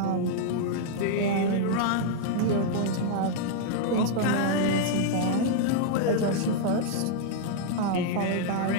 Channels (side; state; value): both; different; correlation -0.01